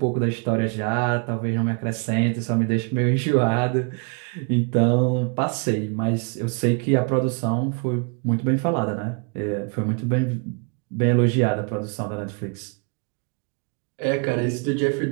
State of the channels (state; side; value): quieter; left; 35.8 dB